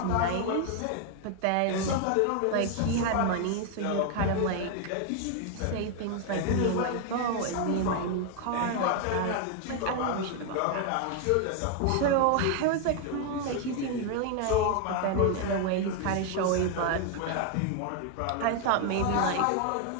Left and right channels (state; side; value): different; both; correlation 0.01